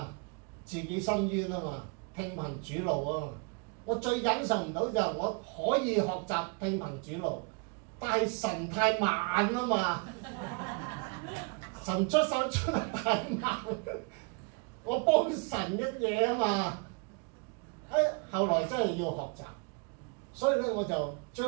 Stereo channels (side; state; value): left; quieter; 33.4 dB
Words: 自己伸冤啊嘛，聽憑主怒啊！我最忍受唔到就係我可以學習聽憑主怒，但係神太慢啊嘛，神出手出得太慢，我幫神一嘢啊嘛。後來真係要學習，所以咧我就